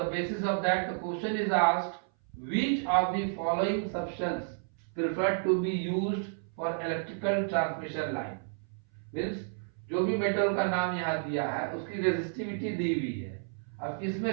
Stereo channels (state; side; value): silent; left; 57 dB below the other